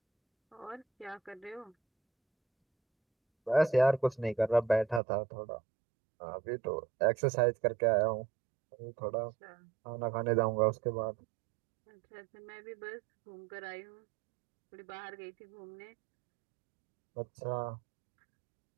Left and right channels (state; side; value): drops out; left; at 5.0 s